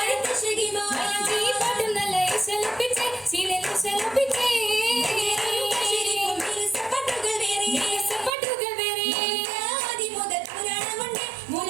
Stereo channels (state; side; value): drops out; left; at 8.3 s